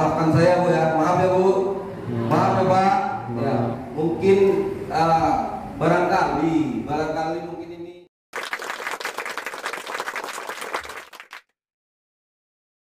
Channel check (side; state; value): both; identical; correlation 1.00